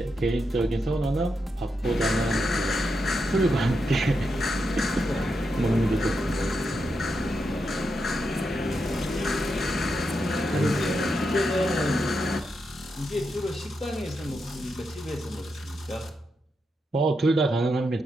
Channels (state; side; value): normal; both; correlation 0.84